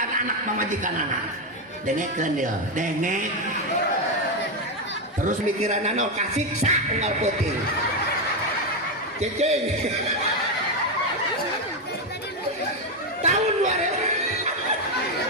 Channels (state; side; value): normal; both; correlation 0.07